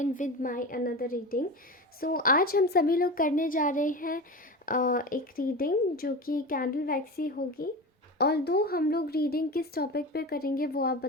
with my another reading. So आज हम सभी लोग करने जा रहे हैं एक रीडिंग जो कि कैंडल वैक्स ही होगी। और दो हम लोग रीडिंग किस टॉपिक पे करेंगे वो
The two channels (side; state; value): both; normal; correlation 0.27